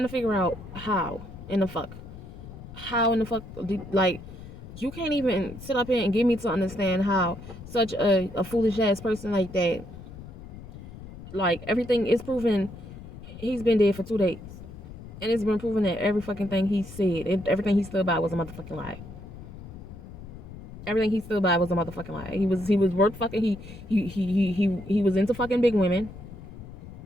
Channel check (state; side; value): noise; left; rumble, 14 dB below the sound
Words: to figure out how in the fuck. How in the fuck, like, you can't even sit up here and get me to understand how such a foolish ass person like that, like, everything is proven. He's been dead for 2 days. And it's been proven that every fucking thing he said, everything he stood by was a motherfucking lie. Everything he stood by was a motherfucking lie. He was worth fucking, he was into fucking big women.